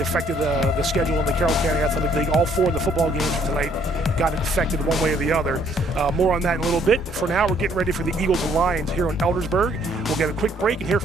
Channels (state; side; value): normal; both; correlation 0.64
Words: affected the schedule in the Carroll County Athletic League. All 4 of the football games for tonight got affected one way or the other. More on that in a little bit. For now, we're getting ready for the Eagles and Lions here in Eldersburg. We'll get a quick break and hear